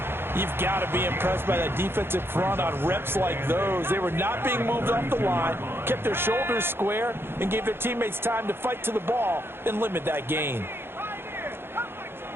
You've got to be impressed by that defensive front on reps like those. They were not being moved off the line, kept their shoulders square, and gave their teammates time to fight to the ball and limit that gain.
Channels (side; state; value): left; late; 0.11 ms